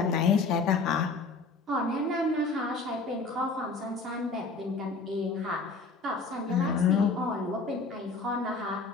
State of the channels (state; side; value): quieter; right; 3.9 dB